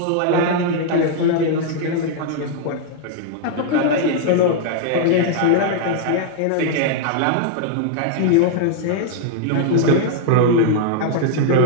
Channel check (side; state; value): both; different; correlation -0.01